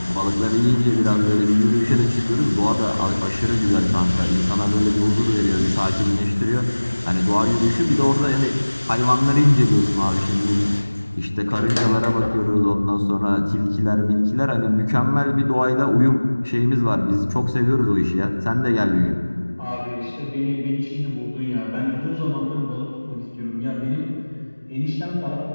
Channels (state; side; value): inverted; both; correlation -1.00